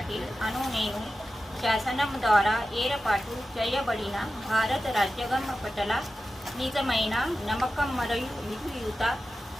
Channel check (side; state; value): both; normal; correlation 0.93